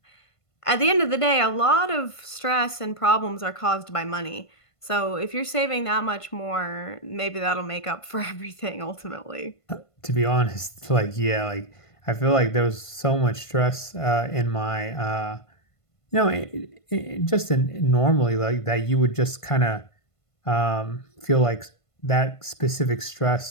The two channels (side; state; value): right; late; 1.5 ms